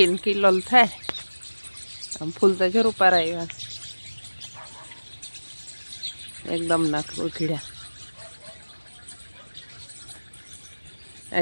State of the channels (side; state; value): both; inverted; correlation -1.00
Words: કિલોલ થાય આમ ફૂલ તો જરૂર પારાવ્યા એકદમ નાખ ઉઘડ્યા